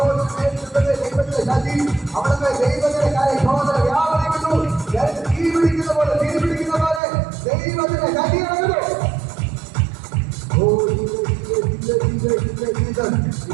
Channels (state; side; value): drops out; left; at 7.0 s